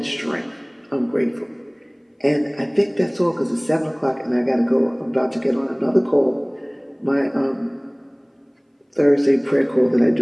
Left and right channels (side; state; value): both; identical; correlation 1.00